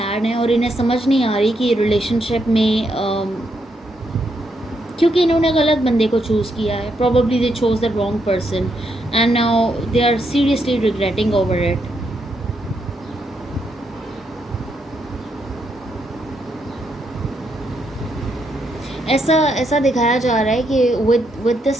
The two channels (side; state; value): both; normal; correlation 0.78